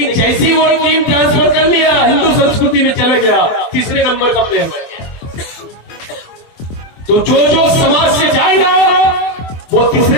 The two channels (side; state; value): right; late; 24 ms